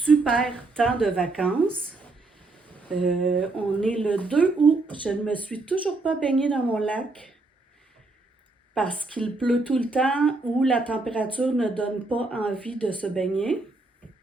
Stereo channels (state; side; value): quieter; left; 3.3 dB